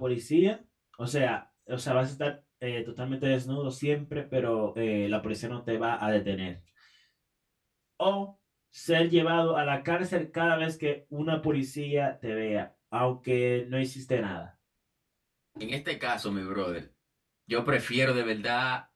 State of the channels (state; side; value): identical; both; correlation 1.00